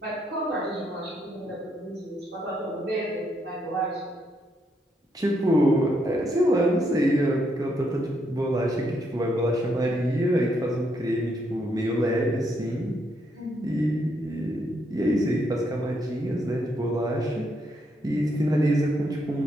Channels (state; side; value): normal; both; correlation 0.76